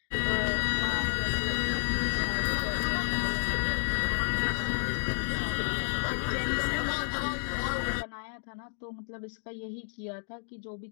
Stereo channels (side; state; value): right; silent; digital silence